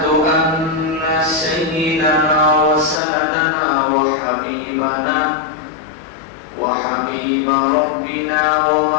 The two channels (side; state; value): right; drops out; at 3.0 s